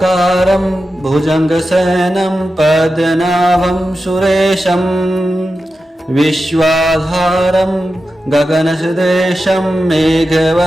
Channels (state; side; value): normal; both; correlation 0.91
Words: भुजङ्गशयनं पद्मनाभं सुरेशं विश्वाधारं गगनसदृशं